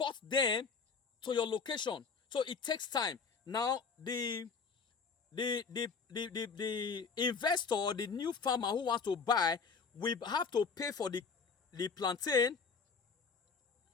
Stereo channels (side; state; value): right; quieter; 5.3 dB